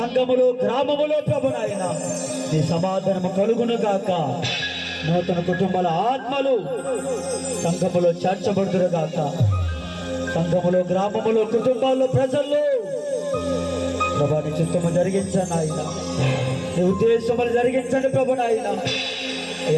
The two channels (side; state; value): both; identical; correlation 1.00